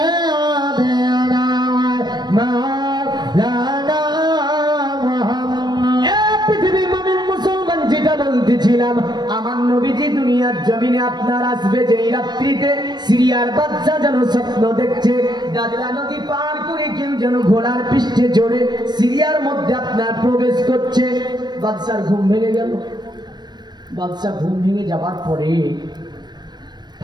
مولانا محمد। পৃথিবীর মুমিন মুসলমান যেটা বলতেছিলাম আমার নবীজি দুনিয়ার জমিনে আপনার আসবে যেই রাত্রিতে সিরিয়ার বাচ্চা যেন স্বপ্ন দেখছে দাজলা নদী পার করে কেউ যেন ঘোড়ার পৃষ্ঠে চড়ে সিরিয়ার মধ্যে আপনার প্রবেশ করছে। বাদশার ঘুম ভেঙে গেল। বাদশা ঘুম ভেঙে যাবার পরে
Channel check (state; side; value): late; left; 0.21 ms